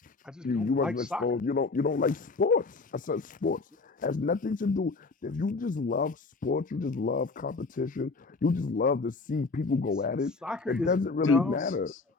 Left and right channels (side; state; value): right; quieter; 3.9 dB